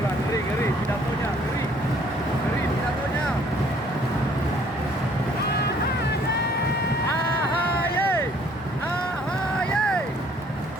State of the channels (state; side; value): normal; both; correlation 0.59